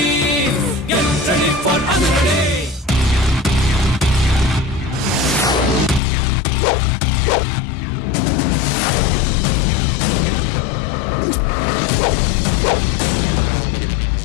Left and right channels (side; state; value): right; drops out; at 6.0 s